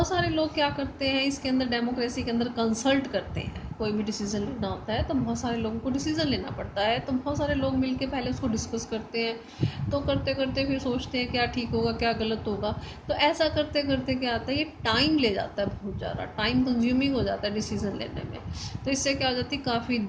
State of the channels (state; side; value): identical; both; correlation 1.00